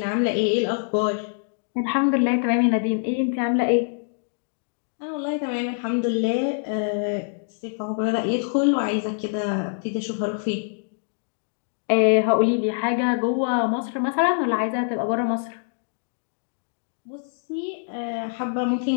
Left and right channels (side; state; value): right; silent; digital silence